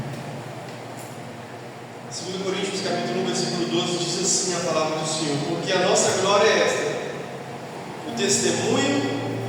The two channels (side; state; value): both; identical; correlation 1.00